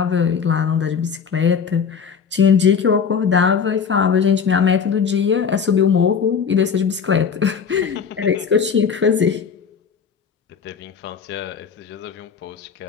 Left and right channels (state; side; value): quieter; right; 6.6 dB